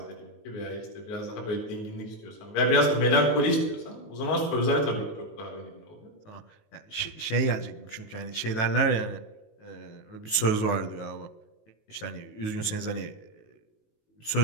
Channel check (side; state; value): right; late; 19 ms